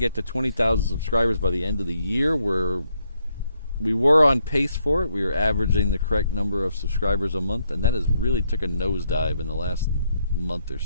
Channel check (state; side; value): inverted; both; correlation -0.75